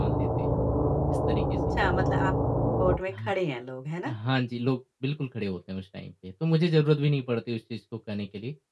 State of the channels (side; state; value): both; identical; correlation 1.00